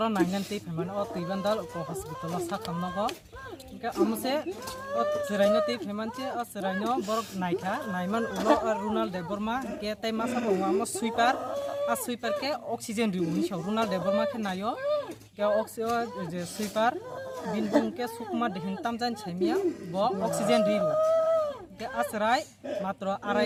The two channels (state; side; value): identical; both; correlation 1.00